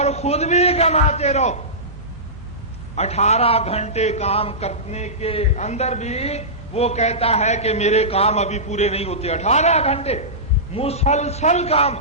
خود بھی کماتے رہو۔ 18 گھنٹے کام کرنے کے اندر بھی وہ کہتا ہے کہ میرے کام ابھی پورے نہیں ہوتے، 18 گھنٹے مسلسل کام،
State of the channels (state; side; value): normal; both; correlation -0.18